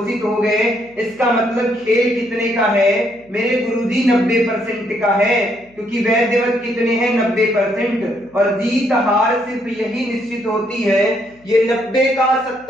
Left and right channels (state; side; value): noise; left; hum, 29 dB below the sound